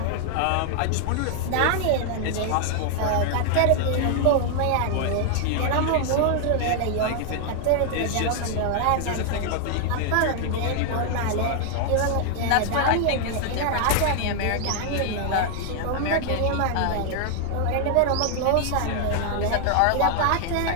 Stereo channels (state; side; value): different; both; correlation 0.00